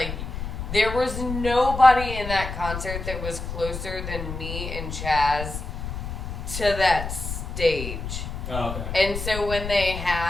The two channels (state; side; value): noise; left; rumble, 6 dB below the sound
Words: there was nobody in that concert that was closer than me and Chaz to that stage. Oh, okay. And so when they